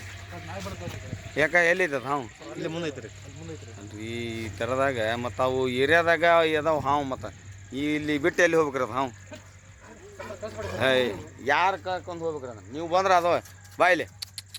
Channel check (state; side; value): identical; both; correlation 1.00